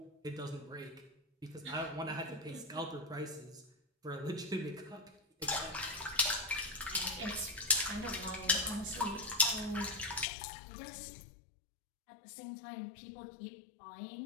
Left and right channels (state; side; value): drops out; right; at 10.2 s